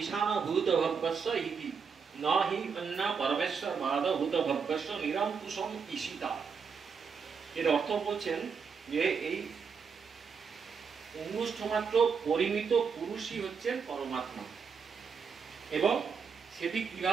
ভূত ভব্যস্য ইতি ন হি অন্য পরমেশ্বর বাদ ভূত ভব্যস্য নিরঙ্কুশম ঈশিতা। এর অর্থ বলছেন যে এই অঙ্গুষ্ঠ মাত্র পরিমিত পুরুষই হচ্ছেন পরমাত্মা, এবং সেটি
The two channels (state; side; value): quieter; left; 5.9 dB